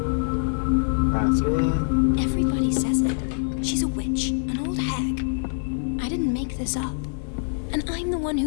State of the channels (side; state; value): right; silent; digital silence